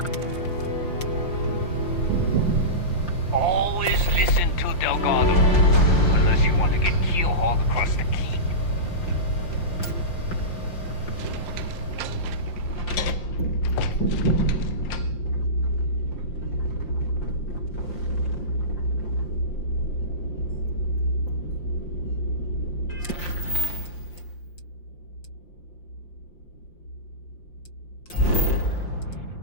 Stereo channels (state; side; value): late; right; 5.7 ms